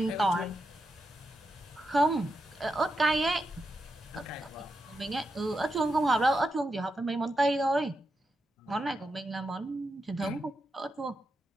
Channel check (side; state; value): both; normal; correlation 0.86